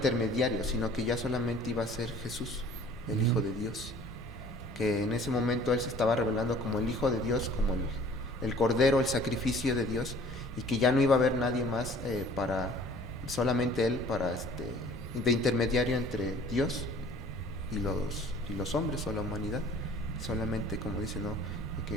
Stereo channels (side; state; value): left; noise; rumble, 19 dB below the sound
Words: sino que ya solamente iba a ser Jesús, el Hijo de Dios. Que en ese momento Él se estaba revelando como el Hijo de Dios, como el Cordero, el sacrificio de Dios, y que ya no iba a haber nadie más para, solamente Él, para de intermediario entre Dios y los hombres o la humanidad. Solamente, como dice, ¿no?,